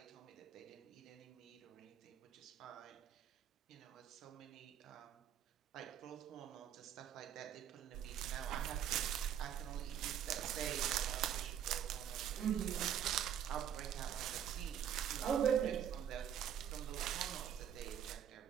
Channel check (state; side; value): quieter; left; 9.5 dB